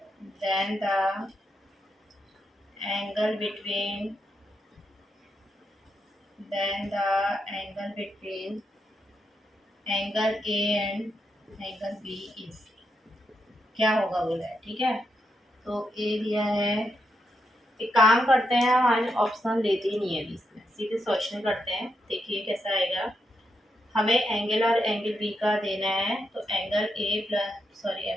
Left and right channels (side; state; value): both; normal; correlation 0.83